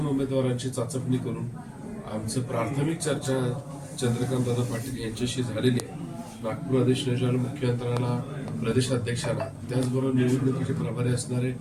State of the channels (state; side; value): identical; both; correlation 1.00